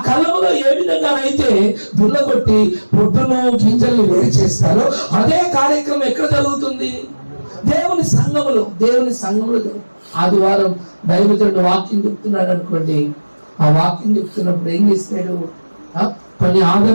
కళ్ళములో ఏ విధంగానైతే దున్నగొట్టి పొట్టును గింజల్ని వేరు చేస్తారో అదే కార్యక్రమం ఎక్కడ జరుగుతుంది? దేవుని సంఘములో. దేవుని సంఘములో ఆదివారం దైవజనుడు వాక్యం చెప్తున్నాడు అనుకోండి, ఆ వాక్యం చెప్తున్నప్పుడు ఏం చేస్తాడు? కొన్ని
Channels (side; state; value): both; inverted; correlation -1.00